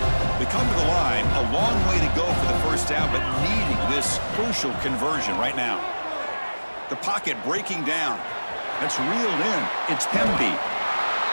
They come to the line, a long way to go for the first down, but needing this crucial conversion right now. The pocket breaking down. It's reeled in. It's Pemby.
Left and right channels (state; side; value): inverted; both; correlation -1.00